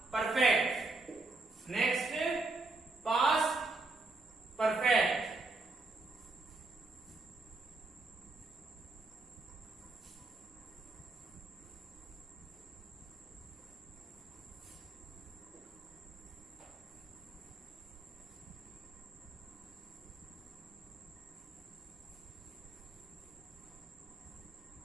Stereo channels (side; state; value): left; quieter; 3.3 dB